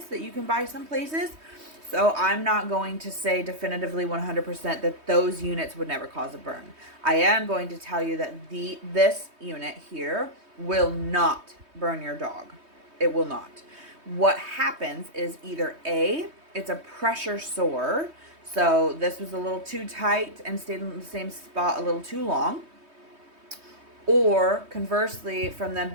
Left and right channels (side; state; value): left; late; 3.2 ms